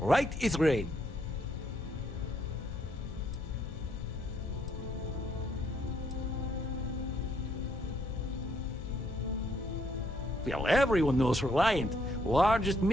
is rain. Well, everyone knows Reliant, largest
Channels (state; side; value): normal; both; correlation 0.71